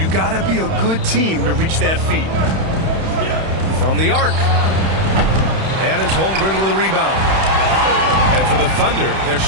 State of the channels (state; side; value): late; left; 31 ms